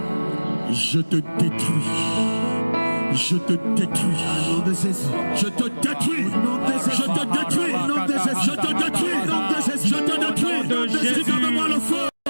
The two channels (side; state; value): both; inverted; correlation -1.00